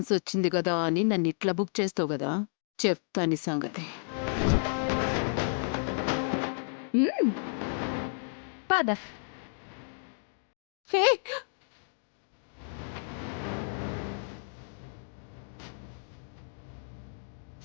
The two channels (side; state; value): right; silent; digital silence